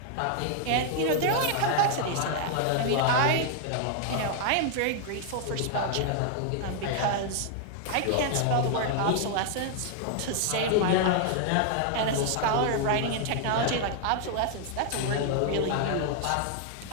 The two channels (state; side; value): different; both; correlation 0.00